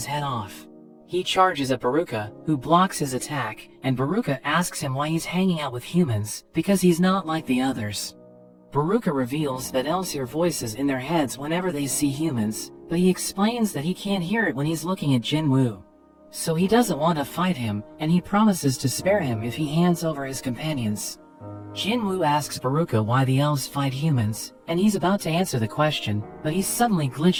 head off. He charges at Baruka, who blocks his attack, and Baruka asks him why he's hanging out with humans, because he's not like the others. Baruka reveals that elves hear voices in their heads whenever they see humans, but he explains that he can't hear it when he's looking at Jinwoo. So he doesn't want to fight him, and he promises to spare him if he hands over his companions. Jinwoo asks Baruka why the elves fight humans, and he's about to answer the question, but he suddenly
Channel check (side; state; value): both; identical; correlation 1.00